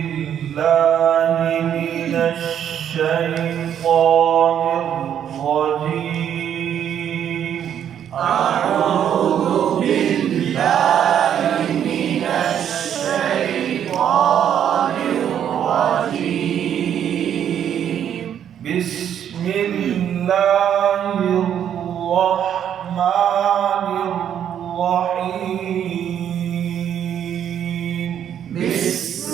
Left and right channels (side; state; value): left; quieter; 9.4 dB